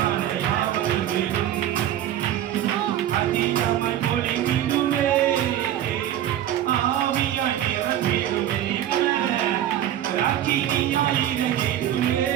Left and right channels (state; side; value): quieter; left; 11.7 dB